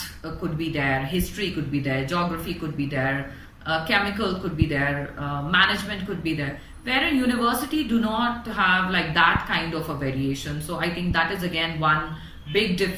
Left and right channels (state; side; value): identical; both; correlation 1.00